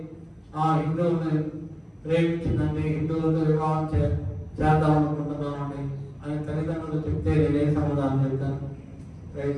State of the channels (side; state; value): both; identical; correlation 1.00